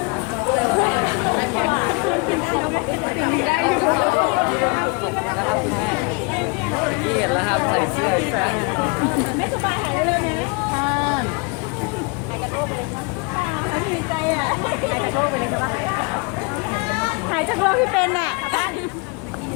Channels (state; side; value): quieter; right; 30.8 dB